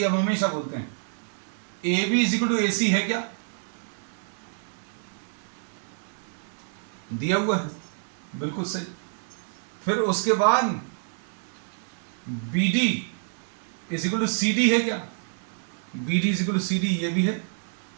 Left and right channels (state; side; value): silent; left; digital silence